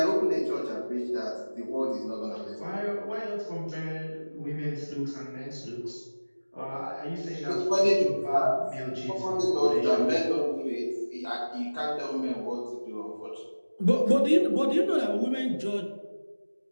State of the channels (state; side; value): inverted; both; correlation -1.00